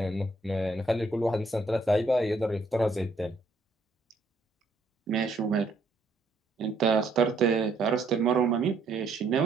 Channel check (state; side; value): quieter; left; 3.1 dB